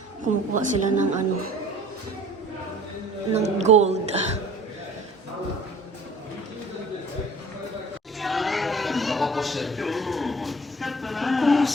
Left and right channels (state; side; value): normal; both; correlation 0.48